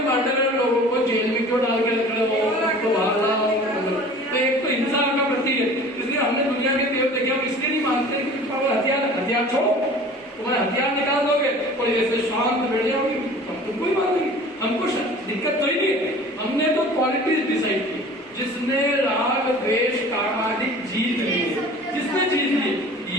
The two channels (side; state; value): both; normal; correlation 0.44